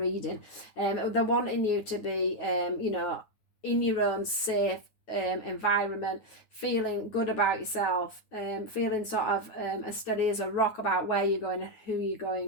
They're wanting you to be in your own safe environment, feeling good about yourself, feeling sort of as steady as a rock about where you're going and who you're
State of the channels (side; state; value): right; late; 9.2 ms